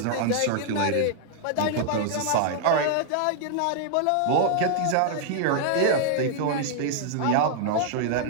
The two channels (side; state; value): both; different; correlation -0.01